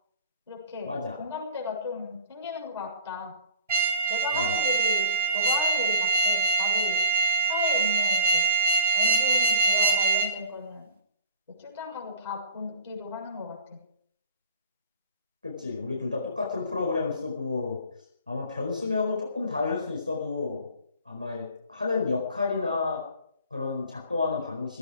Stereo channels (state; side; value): inverted; both; correlation -0.43